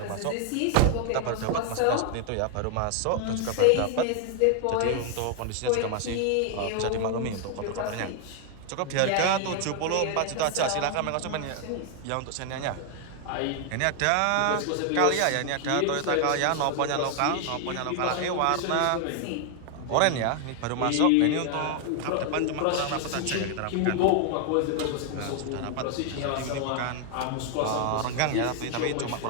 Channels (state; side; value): different; both; correlation 0.00